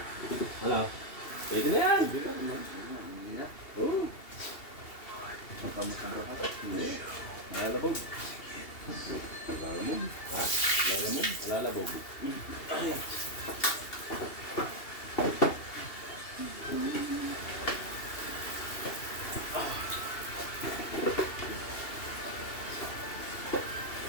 Ano? Pwede na yan. Hindi na naman. Hindi na. Oo. Makamusang rahat. Lalabog. Lalamog. Ha? Lalamog? Lalabog.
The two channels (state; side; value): late; right; 2.8 ms